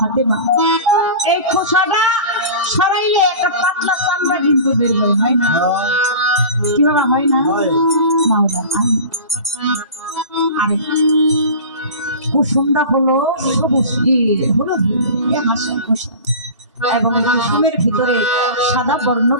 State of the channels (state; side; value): inverted; both; correlation -0.35